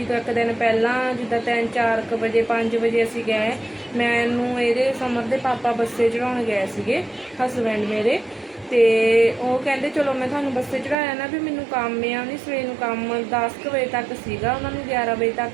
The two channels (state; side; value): drops out; left; at 11.0 s